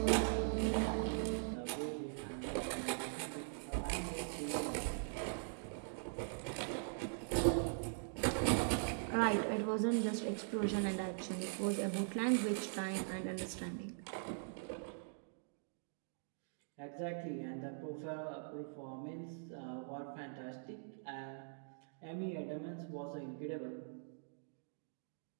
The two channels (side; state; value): left; silent; digital silence